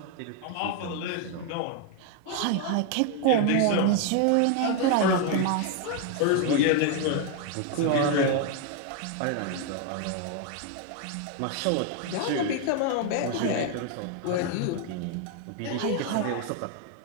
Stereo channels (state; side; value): different; both; correlation 0.01